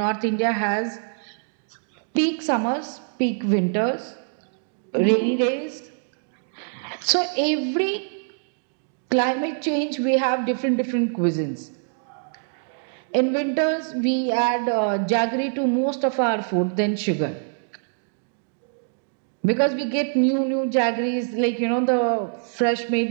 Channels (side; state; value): left; silent; digital silence